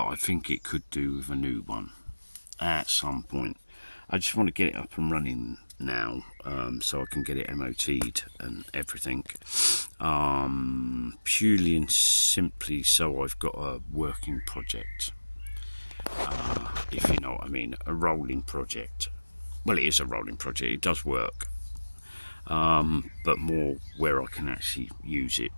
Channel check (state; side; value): inverted; both; correlation -1.00